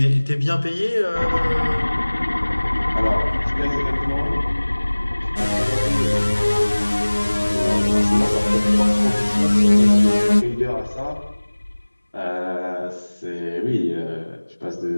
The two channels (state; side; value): inverted; both; correlation -1.00